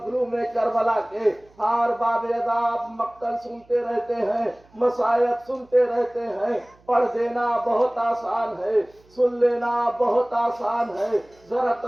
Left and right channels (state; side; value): noise; right; hum, 30 dB below the sound